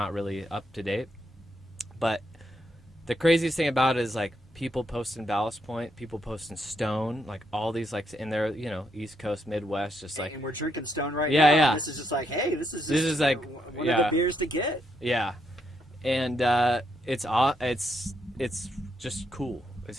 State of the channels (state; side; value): normal; both; correlation 0.78